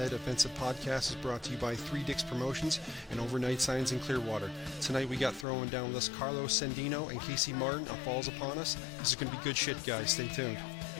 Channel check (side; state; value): right; drops out; at 5.5 s